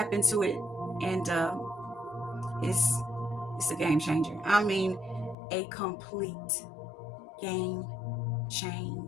into it, and it's a game changer. I mean, a complete game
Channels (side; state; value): right; drops out; at 5.4 s